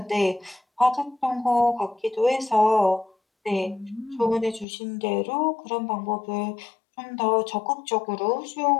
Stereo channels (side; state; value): right; drops out; at 4.7 s